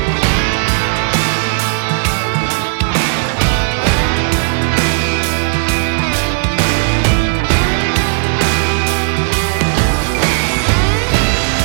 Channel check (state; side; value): silent; left; 70 dB below the other